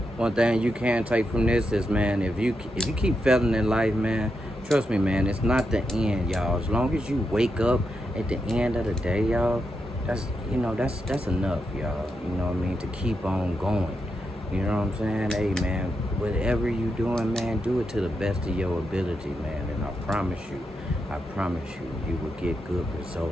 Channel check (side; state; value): both; normal; correlation 0.85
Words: One thing you can take from this is, man, if you keep failing in life, man, trust me, man, it's not the end, y'all. As long as you wake up at the end of the day, y'all, that's enough, y'all. You know what I mean? To keep on going. You know what I'm saying? Hey, man, whatever you doing, man, do it to the best of your ability, man. And I promise you, you will get good